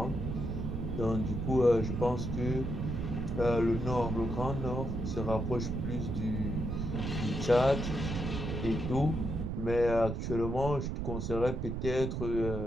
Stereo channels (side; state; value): right; noise; rumble, 3 dB below the sound